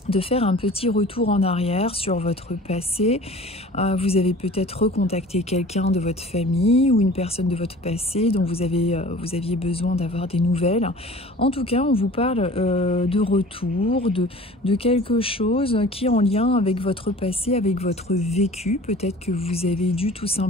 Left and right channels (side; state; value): both; normal; correlation 0.44